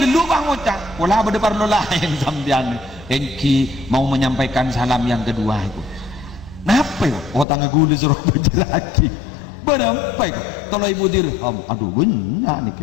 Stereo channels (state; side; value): drops out; right; at 7.5 s